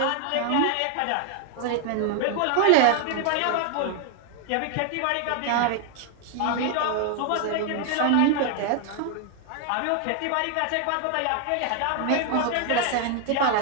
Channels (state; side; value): different; both; correlation 0.00